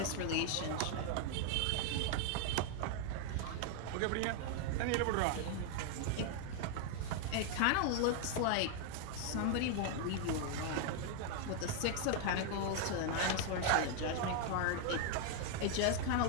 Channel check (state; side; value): different; both; correlation 0.00